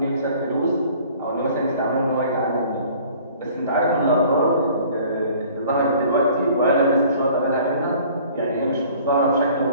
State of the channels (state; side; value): inverted; both; correlation -0.51